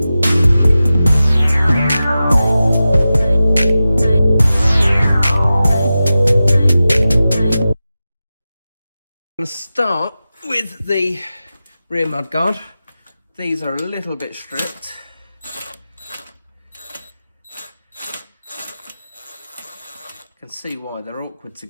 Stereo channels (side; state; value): both; inverted; correlation -0.94